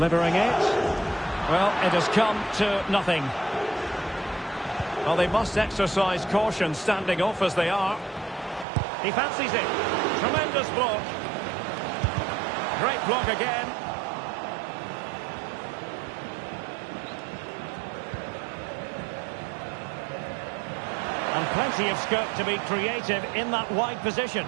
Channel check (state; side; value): drops out; left; at 8.7 s